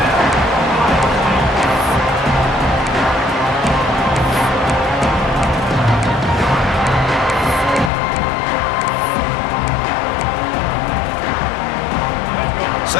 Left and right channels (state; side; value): drops out; right; at 7.9 s